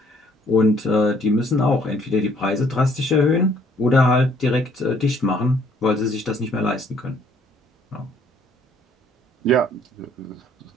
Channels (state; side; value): normal; both; correlation 0.63